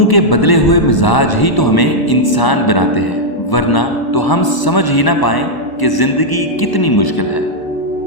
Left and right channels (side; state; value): right; late; 1.0 ms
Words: के बदले हुए मिजाज ही तो हमें इंसान बनाते हैं, वरना तो हम समझ ही ना पाएं कि जिंदगी कितनी मुश्किल है।